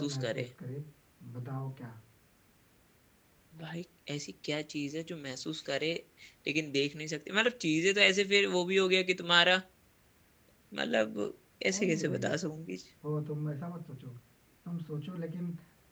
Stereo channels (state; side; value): identical; both; correlation 1.00